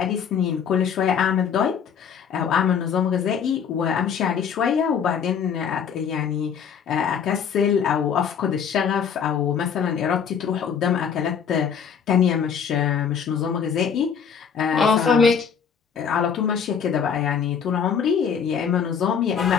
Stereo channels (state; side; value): quieter; right; 7.2 dB